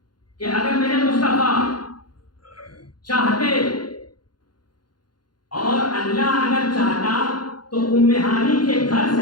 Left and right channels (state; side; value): late; right; 0.71 ms